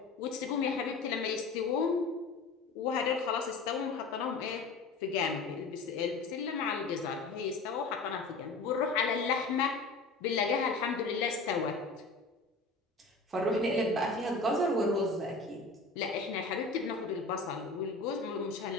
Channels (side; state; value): right; quieter; 3.7 dB